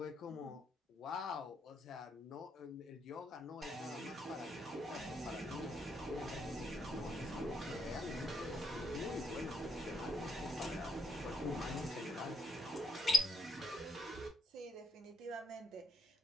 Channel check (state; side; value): normal; both; correlation 0.77